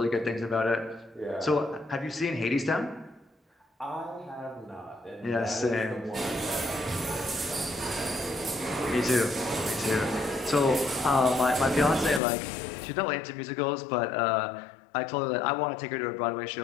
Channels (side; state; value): right; drops out; at 12.2 s